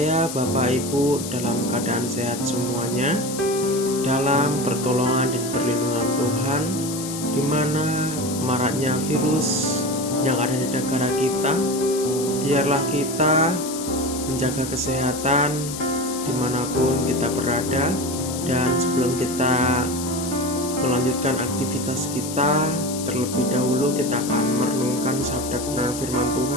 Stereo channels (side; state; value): left; noise; hiss, 8 dB below the sound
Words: Bapak Ibu dalam keadaan sehat semuanya, dalam pertolongan dan perlindungan Tuhan, di mana maraknya virus yang ada di negara kita. Biarlah kita menjaga kesehatan dimanapun kita berada. Dan sebelum kita melanjutkan aktivitas kita, terlebih dahulu kita akan merenungkan sabda kebenaran firman